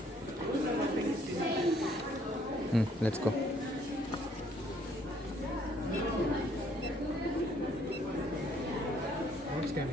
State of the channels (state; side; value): normal; both; correlation 0.64